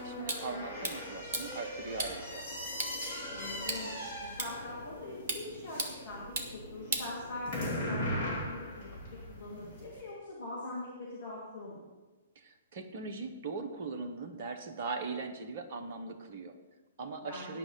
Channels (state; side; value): inverted; both; correlation -0.46